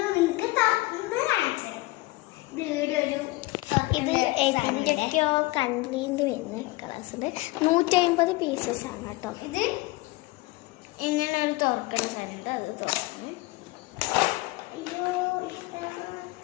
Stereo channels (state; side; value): quieter; right; 21.3 dB